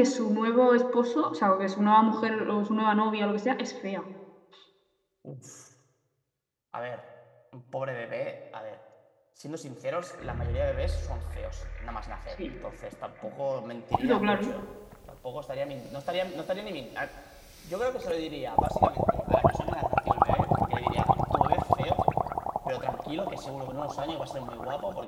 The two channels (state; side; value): identical; both; correlation 1.00